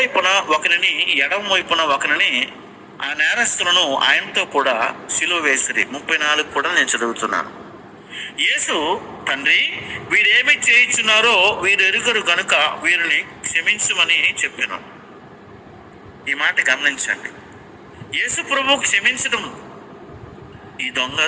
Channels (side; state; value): both; identical; correlation 1.00